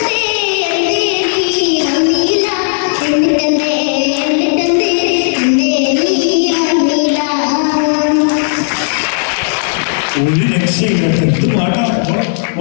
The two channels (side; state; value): right; silent; digital silence